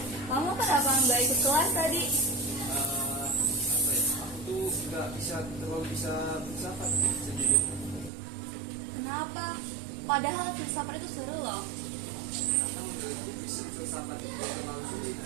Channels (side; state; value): left; drops out; at 8.1 s